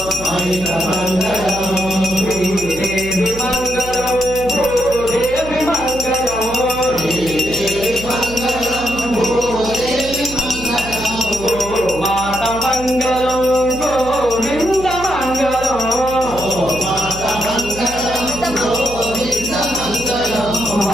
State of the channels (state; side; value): noise; right; hum, 12 dB below the sound